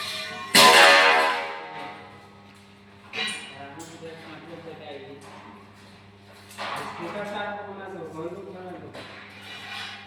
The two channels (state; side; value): identical; both; correlation 1.00